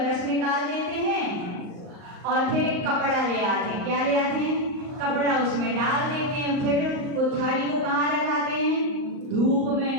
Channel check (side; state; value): left; late; 38 ms